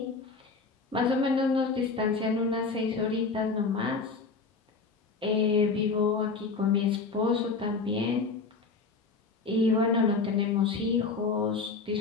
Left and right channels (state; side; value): quieter; right; 4.4 dB